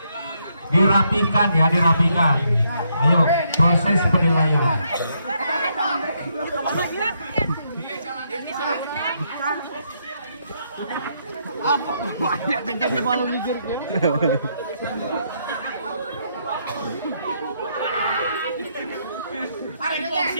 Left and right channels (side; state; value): both; inverted; correlation -0.75